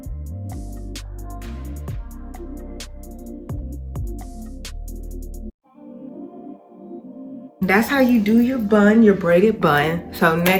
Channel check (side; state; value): both; identical; correlation 1.00